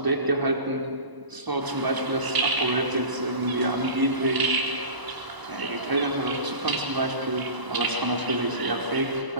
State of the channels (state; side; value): late; left; 1.0 ms